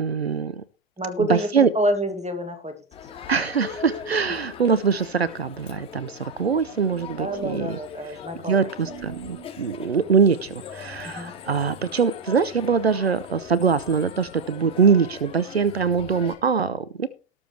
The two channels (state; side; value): quieter; left; 4.8 dB